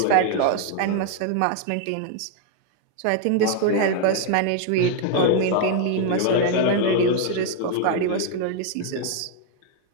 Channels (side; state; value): both; different; correlation 0.00